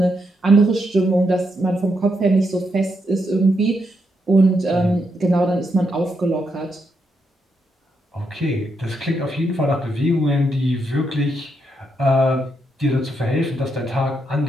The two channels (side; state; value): both; normal; correlation 0.80